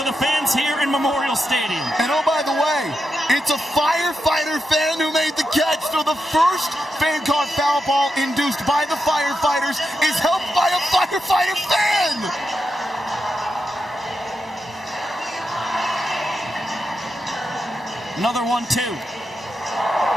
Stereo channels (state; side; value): normal; both; correlation 0.87